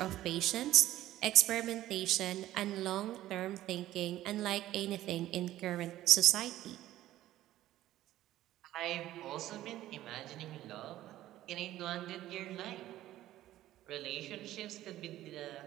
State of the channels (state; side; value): quieter; left; 14.3 dB